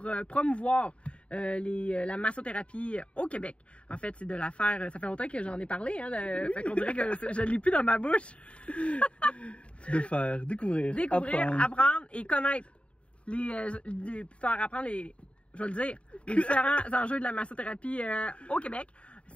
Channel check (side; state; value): right; late; 0.060 ms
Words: promouvoir la massothérapie au Québec. En fait, c'est de la faire... Ça fait longtemps que j'en ai parlé, hein? Fait qu'on dirait que je ne l'ai plus dans ma bouche. De faire découvrir, apprendre et connaître faire apprendre je vais le dire, les différents enjeux de la massothérapie au Québec.